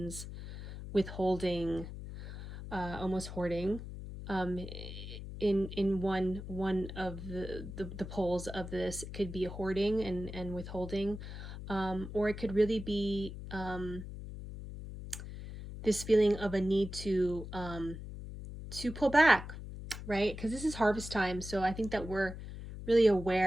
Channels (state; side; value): noise; left; hum, 10 dB below the sound